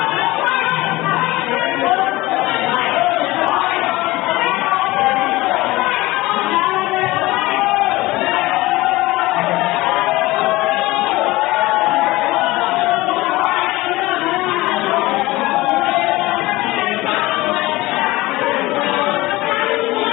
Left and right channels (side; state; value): right; quieter; 19.7 dB